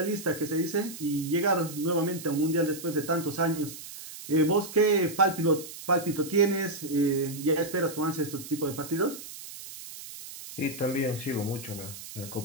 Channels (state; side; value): noise; right; hiss, 13 dB below the sound